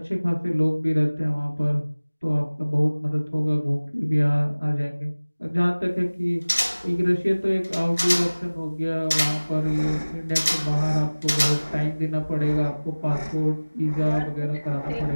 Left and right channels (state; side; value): inverted; both; correlation -1.00